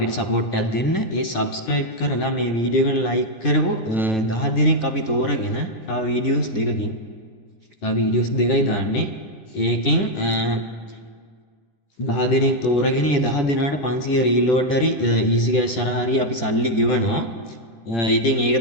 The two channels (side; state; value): right; late; 10 ms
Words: support එකක් දෙන්න. ඒ subscribe කරලා මේ වීඩියෝ එකට like කරමු 10 දිනක් අපි තෝරගෙන තව වීඩියෝස් දෙකකින් තව වීඩියෝස් දෙකයි දාන්නේ. ඒකෙන් 10 දිනක් තෝරගෙන ඒ 10 දිනාට 500 reload හරි easy cash හරි අපි සල්ලි ගෙවනවා. ඉතින් ඒක